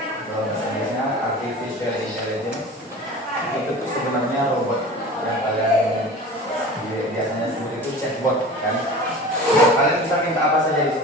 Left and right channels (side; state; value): both; normal; correlation 0.37